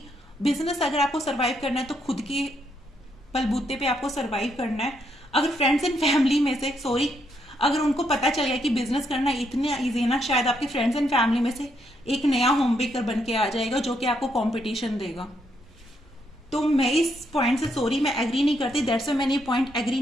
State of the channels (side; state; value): both; normal; correlation 0.76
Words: बिजनेस अगर आपको सर्वाइव करना है तो खुद के बलबूते पे आपको सर्वाइव करना है। अगर फ्रेंड्स एंड फैमिली में से, सॉरी, अगर उनको पता चल गया कि बिजनेस करना इतना इजी है ना, शायद आपके फ्रेंड्स एंड फैमिली में से एक नया होम बेकर बन के आ जाएगा जो कि आपको कंपटीशन देगा। तो मैं इस पॉइंट से, सॉरी, मैं एग्री नहीं करती, दैट्स व्हाई मैंने ये पॉइंट एग्री